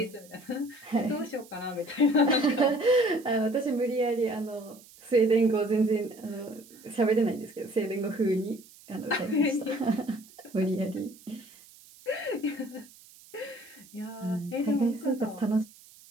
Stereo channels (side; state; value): right; noise; hiss, 23 dB below the sound